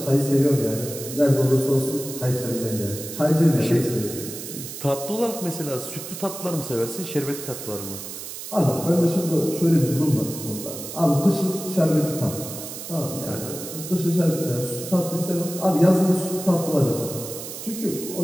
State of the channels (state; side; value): noise; right; hiss, 10 dB below the sound